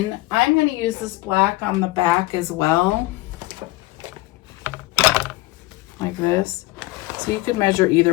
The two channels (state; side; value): quieter; right; 20.0 dB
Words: I'm going to use this black on the back as well, like this. So you could measure